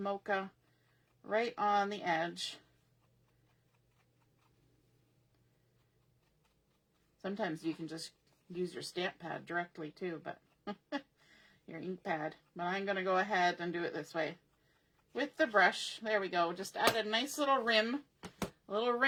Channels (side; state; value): both; identical; correlation 1.00